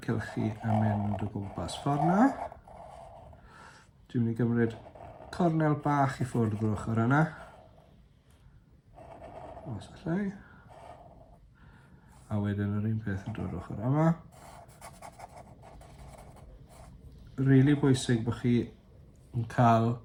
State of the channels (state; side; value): identical; both; correlation 1.00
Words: cylchu yn mynd o gwmpas ffordd na. Dwi'n mynd i gymryd cornel bach i ffwrdd o'r ochr yna. Os allai. A wedyn yr un peth yn dod ochr yma. rili bwysig bod chi yn cael